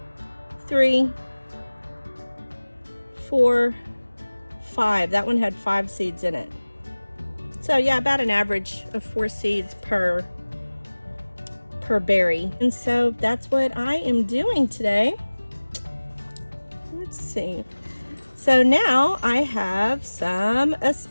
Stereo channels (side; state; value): both; inverted; correlation -1.00